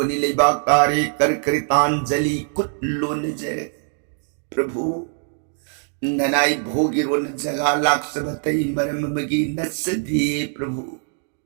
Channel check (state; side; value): silent; left; 55 dB below the other